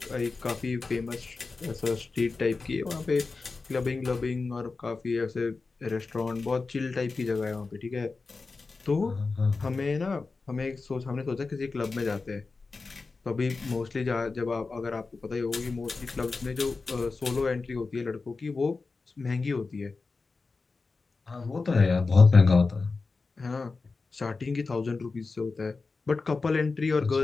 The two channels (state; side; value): quieter; right; 4.1 dB